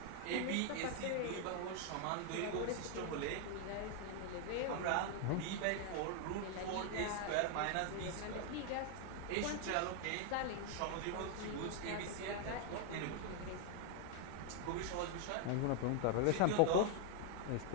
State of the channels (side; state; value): both; different; correlation 0.00